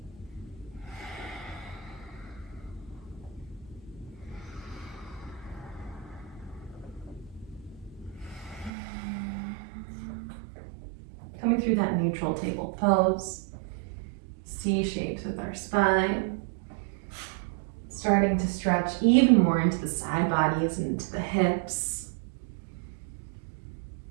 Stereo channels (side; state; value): left; drops out; at 8.7 s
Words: Coming through that neutral table pose, C shapes with our spine, starting to stretch even more into the side bodies and into the hips,